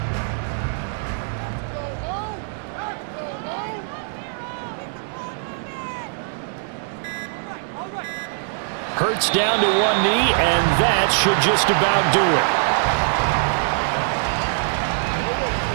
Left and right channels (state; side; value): silent; left; digital silence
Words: Hurts down to one knee, and that should just about do it.